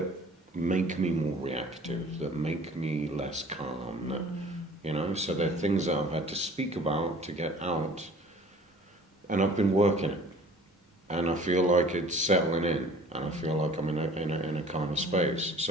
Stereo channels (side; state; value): both; normal; correlation 0.49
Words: make me more reactive, that make me less calm, that, so they're things that I've had to speak about to get out, and I've been working it, and I feel like it's settling in, and I feel like I'm in a kind of space.